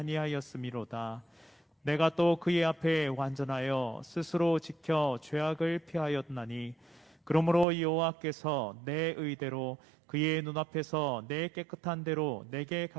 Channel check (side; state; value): left; drops out; at 7.7 s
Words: 내가 또 그의 앞에 완전하여 스스로 지켜 죄악을 피하였나니 그러므로 여호와께서 내 의대로 그의 눈앞에서 내 깨끗한 대로 내게